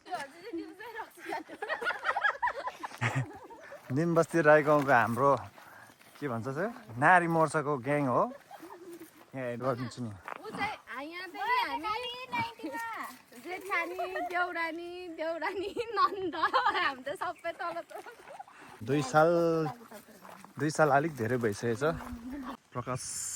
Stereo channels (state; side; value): identical; both; correlation 1.00